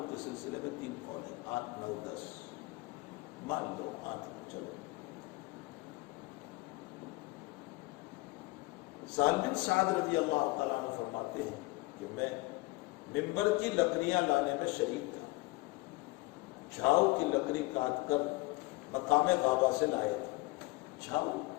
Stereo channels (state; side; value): quieter; right; 23.2 dB